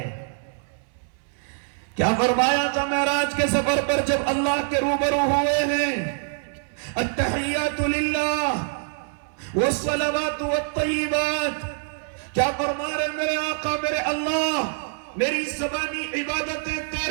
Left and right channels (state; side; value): silent; left; 62 dB below the other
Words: کیا فرمایا تھا معراج کے سفر پر جب اللہ کے روبرو ہوئے ہیں؟ التحیات للہ والصلوات والطیبات۔ کیا فرما رہے میرے آقا میرے اللہ؟ میری زبانی عبادتیں